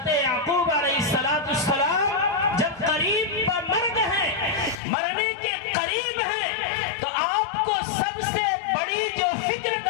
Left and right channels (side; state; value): right; drops out; at 4.8 s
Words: یعقوب علیہ السلام جب قریب پر مر گئے، مرنے کے قریب ہیں، تو آپ کو سب سے بڑی جو فکر